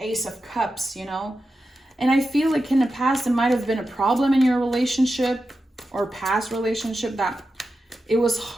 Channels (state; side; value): normal; both; correlation 0.91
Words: of Cups, you know? And I feel like in the past, it might have been a problem in your relationship or past relationship that it was